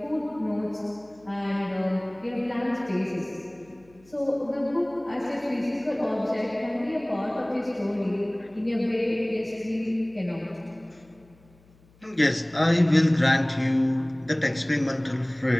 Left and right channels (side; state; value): left; noise; hum, 29 dB below the sound